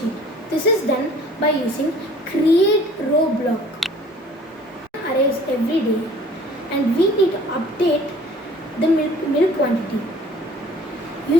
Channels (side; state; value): both; normal; correlation 0.51